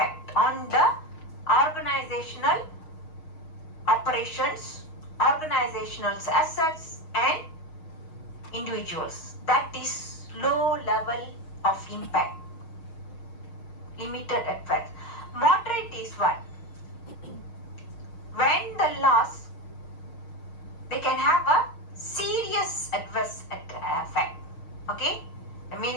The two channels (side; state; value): right; late; 6.4 ms